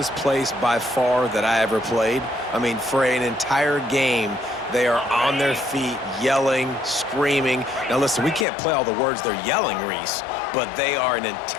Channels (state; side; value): drops out; right; at 8.5 s